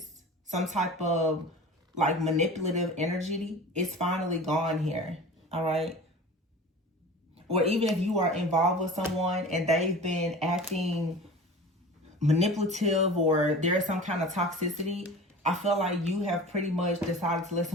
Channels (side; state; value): both; normal; correlation 0.37